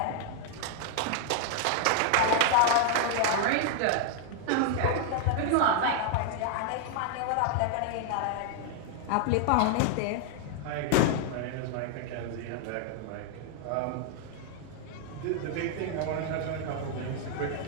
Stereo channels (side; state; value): both; different; correlation 0.00